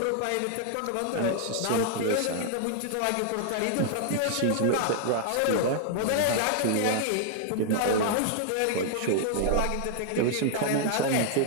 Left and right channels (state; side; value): different; both; correlation 0.00